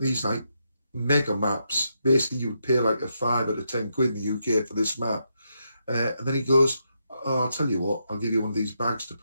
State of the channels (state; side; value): inverted; both; correlation -0.82